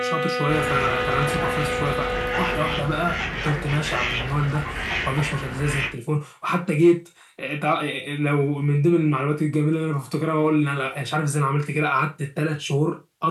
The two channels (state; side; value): identical; both; correlation 1.00